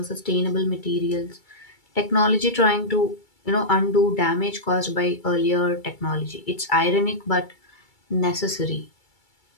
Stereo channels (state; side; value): late; right; 2.3 ms